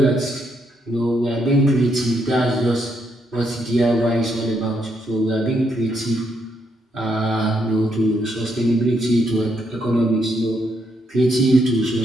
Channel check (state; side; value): normal; both; correlation 0.76